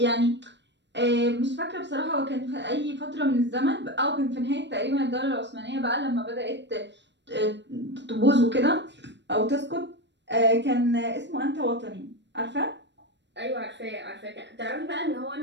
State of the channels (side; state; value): left; late; 0.52 ms